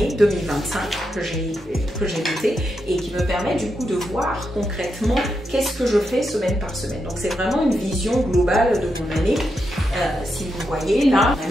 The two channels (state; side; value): normal; both; correlation 0.84